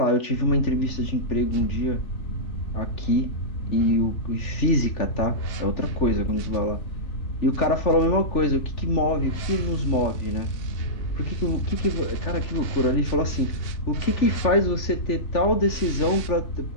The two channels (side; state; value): right; late; 3.4 ms